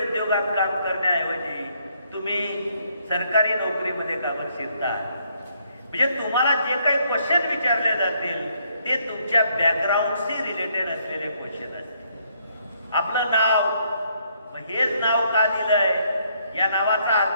काम करण्याऐवजी तुम्ही सरकारी नोकरीमध्ये का बरं शिरता. म्हणजे तुम्हाला जे काही क्वेश्चन विचारले जातील ते तुमच्या बॅकग्राऊंडशी रिलेटेड असलेले क्वेश्चन असतील. आपलं नाव, मग हेच नाव का दिलंय, या नावाचा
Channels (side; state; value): both; inverted; correlation -0.70